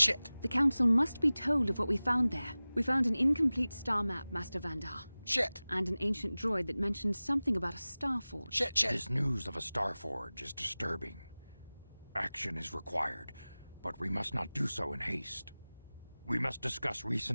The Council must be told of what we found there. We found an incomplete star map, Master Vandar. Shit. And an ancient droid that mentioned something about a star forge. Shit. This news of a star forge is disturbing. Action is required, but we must not do so in haste. We must discuss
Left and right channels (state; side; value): inverted; both; correlation -0.98